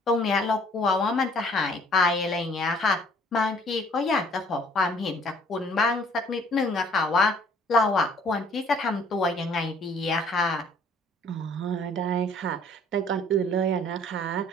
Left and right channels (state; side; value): normal; both; correlation 0.57